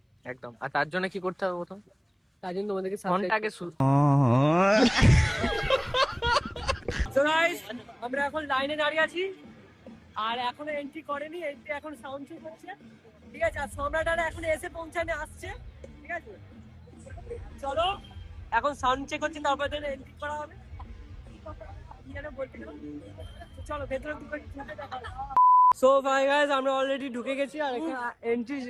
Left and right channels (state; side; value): identical; both; correlation 1.00